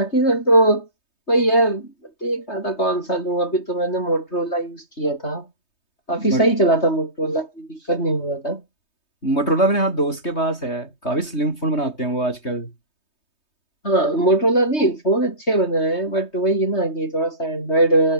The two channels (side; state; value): right; late; 3.2 ms